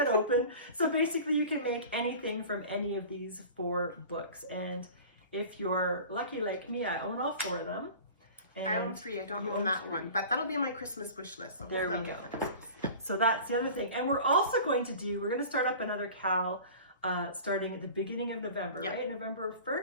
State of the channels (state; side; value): inverted; both; correlation -0.40